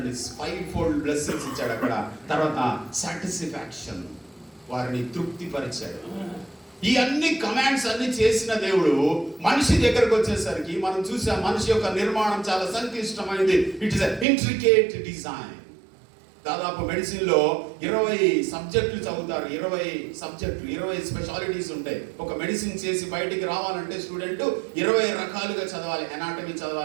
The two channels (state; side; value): drops out; left; at 14.2 s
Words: 5-fold బ్లెస్సింగ్స్ ఇచ్చాడు అక్కడ. తర్వాత సాటిస్ఫాక్షన్, వారిని తృప్తిపరిచాడు. ఈ అన్ని కమాండ్స్ అన్ని చేసిన దేవుడు మనిషి దగ్గరకు వచ్చేసరికి మనం చూసాం, మనిషి యొక్క నిర్మాణం చాలా సంక్లిష్టమైనది. It is intricate design. దాదాపు మెడిసిన్ లో 20 సబ్జెక్టులు చదువుతారు. 20 స్పెషాలిటీస్ ఉంటాయి. ఒక మెడిసిన్ చేసి బయటికి రావాలంటే స్టూడెంట్ 20 రకాలుగా చదవాలి. ఎనాటమీ